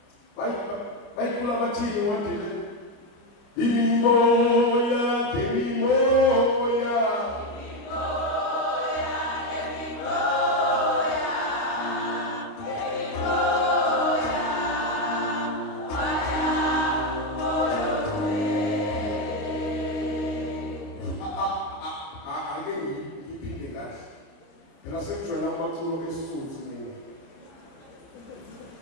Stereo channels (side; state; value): right; late; 29 ms